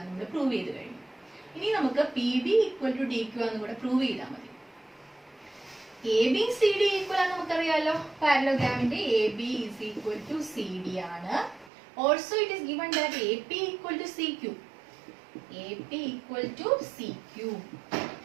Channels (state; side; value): drops out; left; at 11.7 s